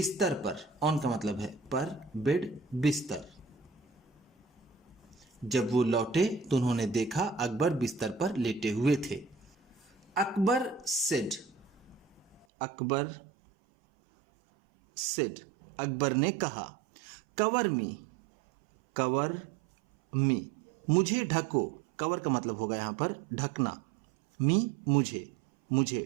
पर। ऑन का मतलब है पर, बेड बिस्तर। जब वो लौटे तो उन्होंने देखा अकबर बिस्तर पर लेटे हुए थे। अकबर सेड, अकबर सेड, अकबर ने कहा। कवर मी, कवर मी, मुझे ढको। कवर का मतलब होगा यहां पर ढकना। मी मुझे, मुझे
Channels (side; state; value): left; drops out; at 12.5 s